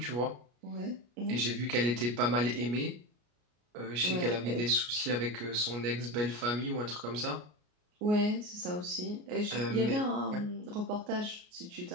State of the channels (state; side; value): late; left; 33 ms